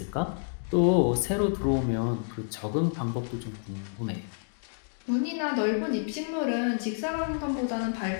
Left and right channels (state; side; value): silent; right; digital silence